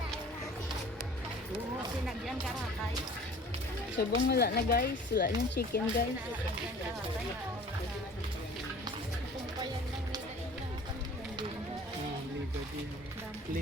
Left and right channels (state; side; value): normal; both; correlation 0.47